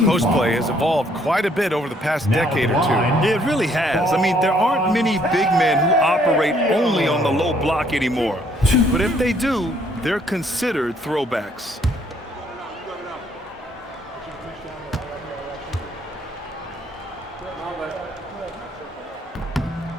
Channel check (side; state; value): both; normal; correlation 0.65